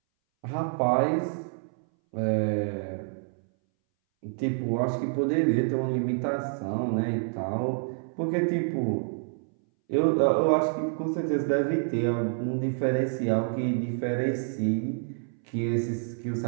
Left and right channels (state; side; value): silent; left; 59 dB below the other